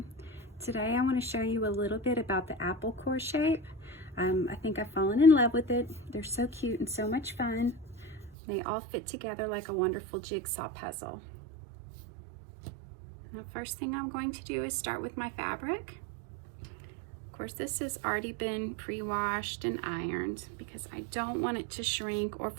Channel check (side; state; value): left; drops out; at 8.3 s